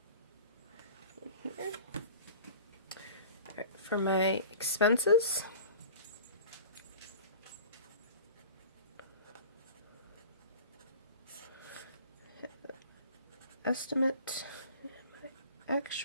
in here. Alright, for my expenses, estimate and my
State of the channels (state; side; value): inverted; both; correlation -0.41